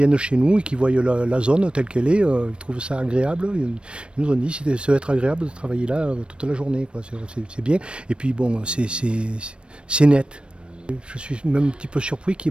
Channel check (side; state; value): left; late; 0.057 ms